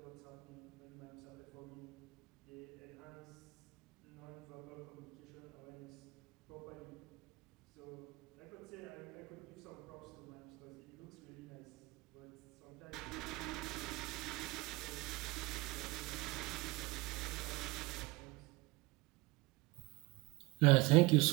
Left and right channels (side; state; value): left; quieter; 23.3 dB